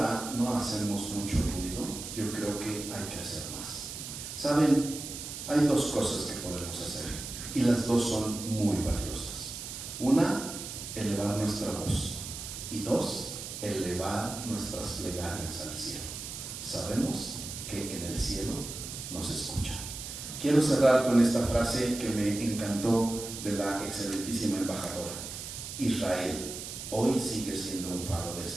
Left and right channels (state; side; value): noise; right; hiss, 8 dB below the sound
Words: no hacemos mucho ruido, yo creo que hay que hacer más. ¿Saben? Hay dos cosas que podemos hacer y las dos son muy valiosas. Una, elevar nuestra voz, y dos, elevar nuestras plegarias al cielo. Sabemos que en el cielo nos escuchan. Quiero cerrar con esta frase que me encantó de la excelentísima embajadora. Israel hoy sigue siendo un faro de